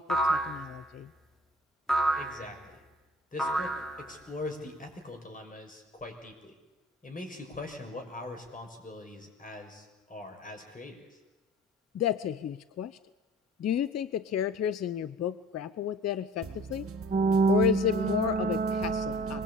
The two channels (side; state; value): both; normal; correlation 0.45